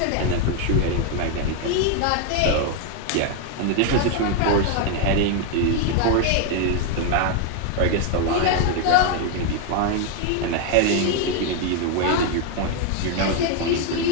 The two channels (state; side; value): different; both; correlation 0.01